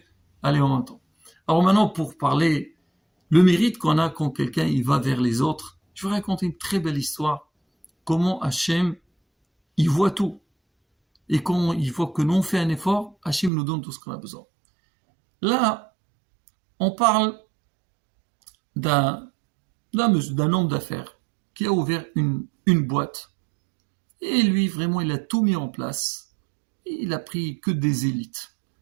aller en même temps. Alors maintenant, pour parler le mérite qu'on a quand quelqu'un il va vers les autres, je vais raconter une très belle histoire. Comment Hachem, il voit tout. Et quand il voit que nous on fait un effort, Hachem nous donne tout ce qu'on a besoin. Là, on parle d'un homme d'affaires qui a ouvert une boîte. Et lui, vraiment, il a tout mis en place. Et il a pris que des élites.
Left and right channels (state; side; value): drops out; left; at 13.5 s